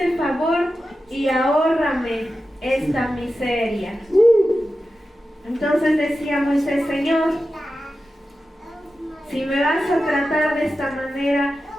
favor y ahórrame esta miseria. Entonces decía Moisés, Señor, si me vas a tratar de esta manera,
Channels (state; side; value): normal; both; correlation 0.92